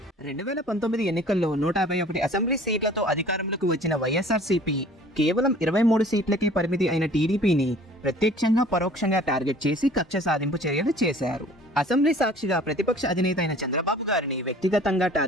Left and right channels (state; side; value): normal; both; correlation 0.49